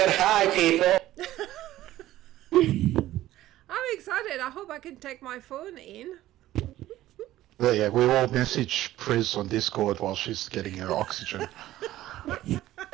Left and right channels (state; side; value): quieter; left; 14.7 dB